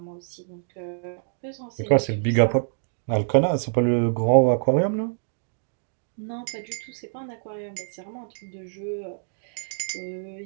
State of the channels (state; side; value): silent; left; digital silence